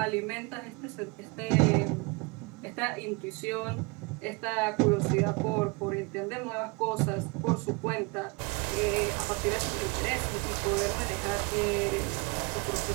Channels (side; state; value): left; quieter; 28.0 dB